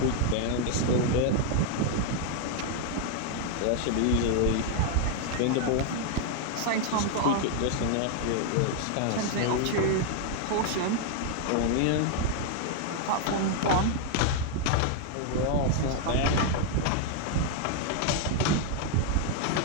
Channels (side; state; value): both; different; correlation 0.00